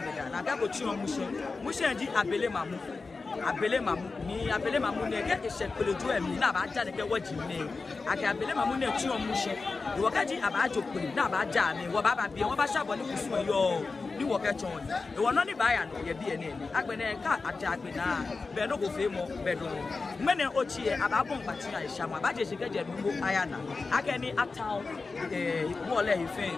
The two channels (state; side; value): quieter; right; 4.1 dB